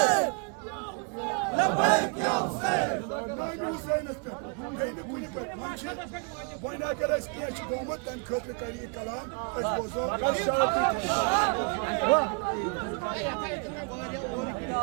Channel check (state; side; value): quieter; left; 36.2 dB